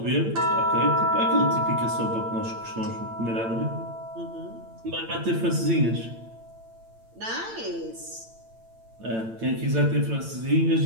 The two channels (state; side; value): late; left; 8.9 ms